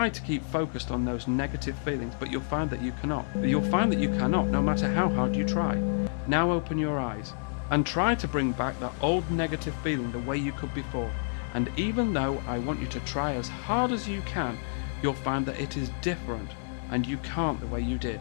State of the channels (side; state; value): right; silent; digital silence